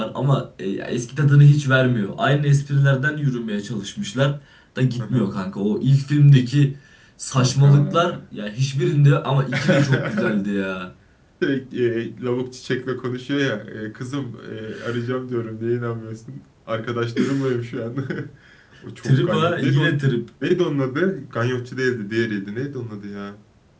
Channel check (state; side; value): identical; both; correlation 1.00